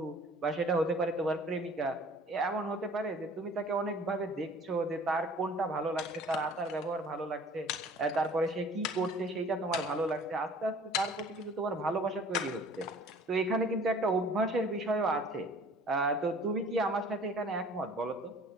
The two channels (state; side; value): normal; both; correlation 0.50